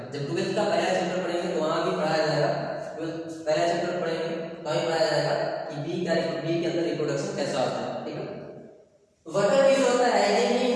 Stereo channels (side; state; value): both; identical; correlation 1.00